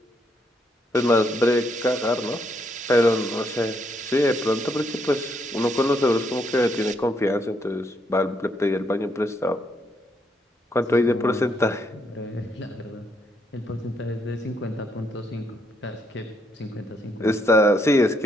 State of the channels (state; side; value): normal; both; correlation 0.75